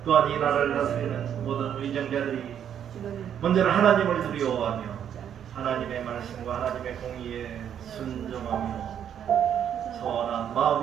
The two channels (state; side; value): quieter; left; 9.2 dB